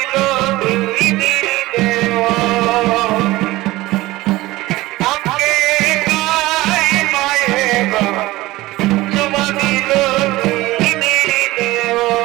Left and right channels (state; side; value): quieter; left; 18.6 dB